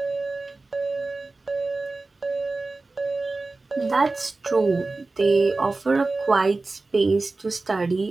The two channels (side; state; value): left; quieter; 3.4 dB